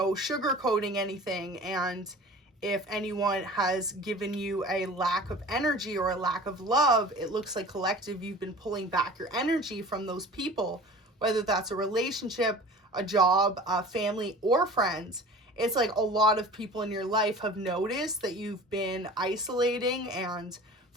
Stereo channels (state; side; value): normal; both; correlation 0.41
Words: sugarcoating anything. And if anyone has given you a lack of energy or a lack of love, it looks like collective, you've been pulling back your energy from those people, whether that's a relationship, a job, a family, or friends. It's like a lot of people in your life have noticed that you've been isolating and